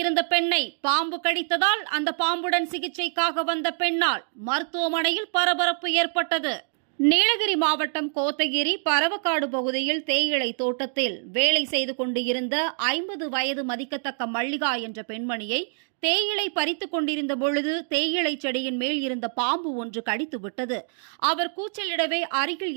இருந்த பெண்ணை பாம்பு கடித்ததால் அந்த பாம்புடன் சிகிச்சைக்காக வந்த பெண்ணால் மருத்துவமனையில் பரபரப்பு ஏற்பட்டது. நீலகிரி மாவட்டம் கோத்தகிரி பரவக்காடு பகுதியில் தேயிலை தோட்டத்தில் வேலை செய்து கொண்டு இருந்த 50 வயது மதிக்கத்தக்க மல்லிகா என்ற பெண்மணியை தேயிலை பறித்துக் கொண்டிருந்த பொழுது தேயிலை செடியின் மேல் இருந்த பாம்பு ஒன்று கடித்துவிட்டது. அவர் கூச்சலிடவே அருகில்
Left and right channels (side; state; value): left; silent; 61 dB below the other